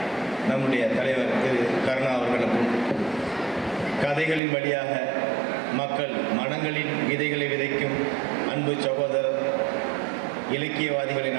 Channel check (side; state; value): left; drops out; at 4.4 s